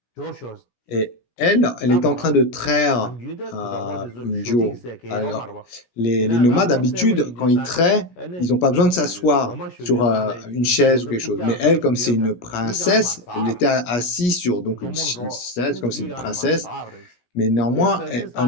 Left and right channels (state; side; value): late; right; 17 ms